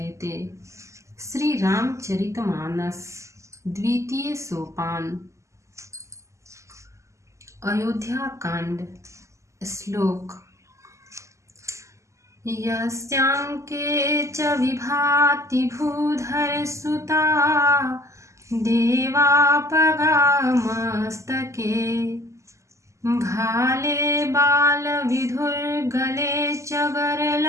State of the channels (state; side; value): late; left; 0.14 ms